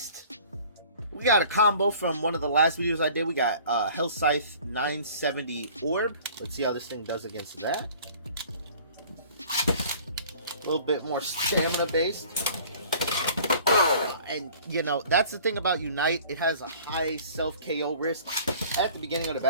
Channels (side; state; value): both; inverted; correlation -0.49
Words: We got a combo from one of the last videos I did. We got Hell Scythe 970 Orb. Let's see how this thing does against that. A little bit more stamina based. And, you know, that's the thing about Unite. It has a high self-KO risk at the beginning of the